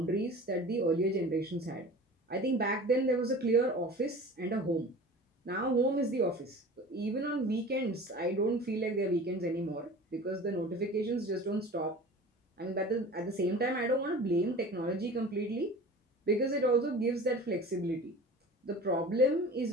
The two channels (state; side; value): normal; both; correlation 0.39